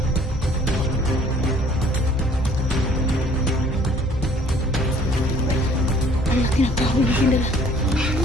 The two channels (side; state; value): both; normal; correlation 0.56